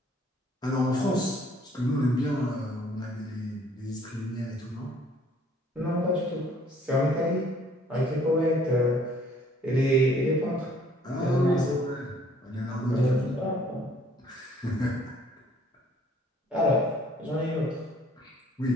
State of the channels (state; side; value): normal; both; correlation 0.59